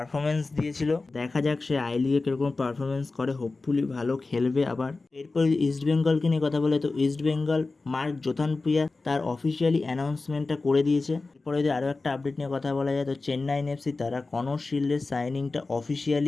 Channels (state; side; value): quieter; right; 3.6 dB